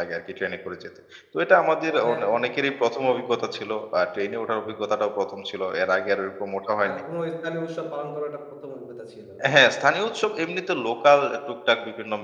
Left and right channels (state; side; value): identical; both; correlation 1.00